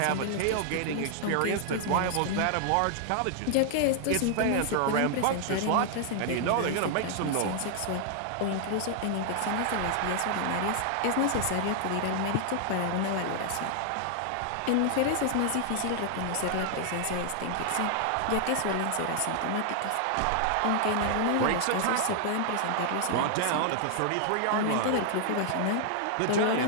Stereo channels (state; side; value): different; both; correlation 0.00